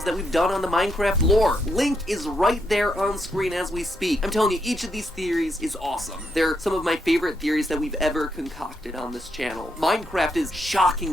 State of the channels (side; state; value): both; normal; correlation 0.79